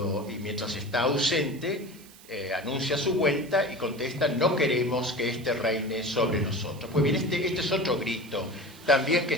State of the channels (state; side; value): noise; right; hiss, 22 dB below the sound